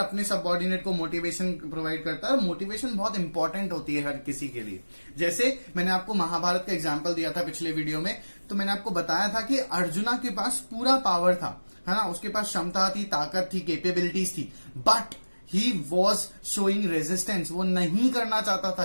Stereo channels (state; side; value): inverted; both; correlation -1.00